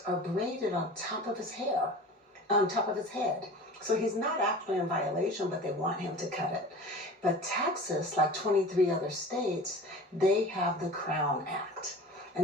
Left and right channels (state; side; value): normal; both; correlation 0.39